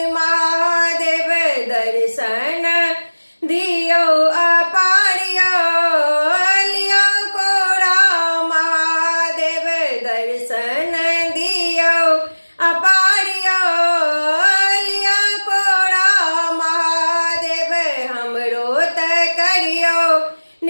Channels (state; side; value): inverted; both; correlation -1.00